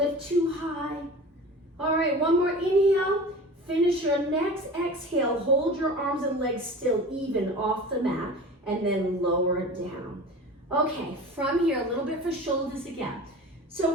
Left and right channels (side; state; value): both; normal; correlation 0.37